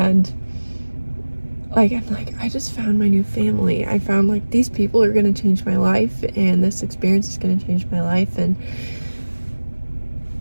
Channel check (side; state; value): both; inverted; correlation -1.00